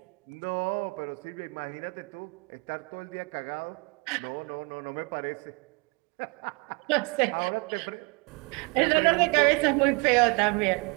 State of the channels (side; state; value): left; quieter; 30.3 dB